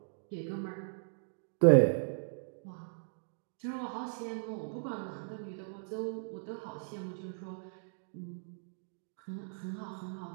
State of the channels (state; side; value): silent; left; digital silence